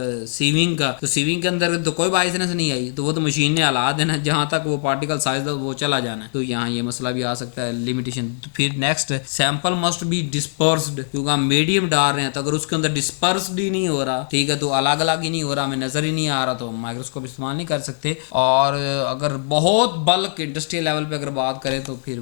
सीविंग का, तो सीविंग के अंदर तो कोई बाइसनेस नहीं आई, तो वो तो मशीन ने हला देना, जहां तक वो पार्टिकल साइज वो चला जाना है। तो यहाँ ये मसला भी आ सकता है, लिमिटेशन। तो फिर next, sample must be dispersed, क्योंकि हम मीडियम डाल रहे हैं, तो अगर उसके अंदर डिस्पर्स्ड ही नहीं हो रहा, ठीक है, तो अलग अलग ही नहीं हो रहा, हमें नजर ही नहीं आ रहा, तो माइक्रोस्कोप इस्तेमाल नहीं कर सकते। और अगर बहुत बल्क इंडस्ट्रियल लेवल पे अगर बात करें तो फिर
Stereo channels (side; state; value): right; silent; digital silence